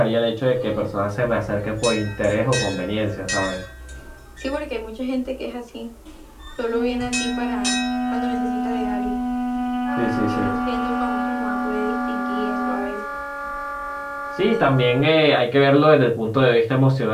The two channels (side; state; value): both; identical; correlation 1.00